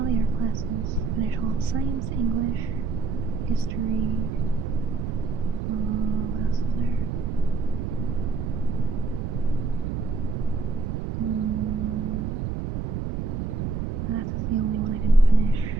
the art classes. Finished all science, English, history. What else is there? Math is the only one I didn't finish,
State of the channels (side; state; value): right; noise; rumble, 2 dB below the sound